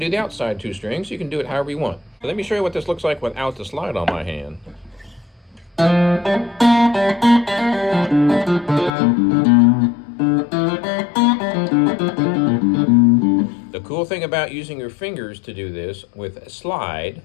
the outside 2 strings. You can do it however you want. So let me show you what this looks like without the slide on my hand. The cool thing about using your fingers to do this with a slide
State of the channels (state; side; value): drops out; right; at 8.9 s